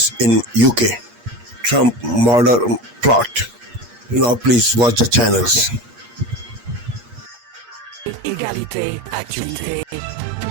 in UK. Trump murder plot. Now please watch the channels. Égalité, actualité.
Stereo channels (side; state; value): left; late; 8.4 ms